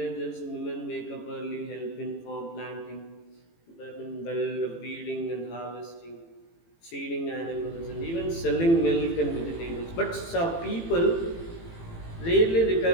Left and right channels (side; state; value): right; late; 18 ms